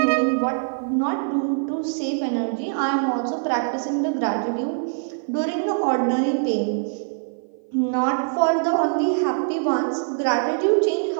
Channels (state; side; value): silent; left; 55 dB below the other